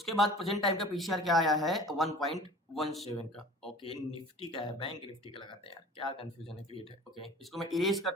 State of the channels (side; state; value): both; normal; correlation 0.42